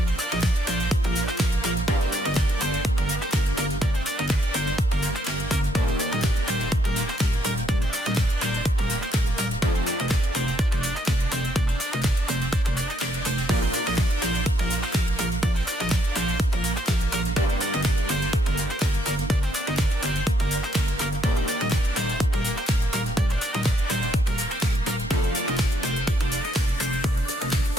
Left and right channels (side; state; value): both; normal; correlation 0.72